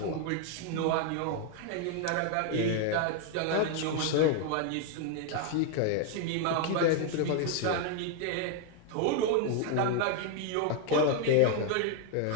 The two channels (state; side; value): different; both; correlation 0.00